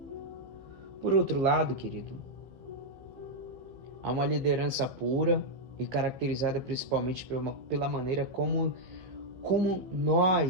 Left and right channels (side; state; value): left; late; 15 ms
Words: Por outro lado, querido, há uma liderança pura e caracterizada principalmente pela maneira como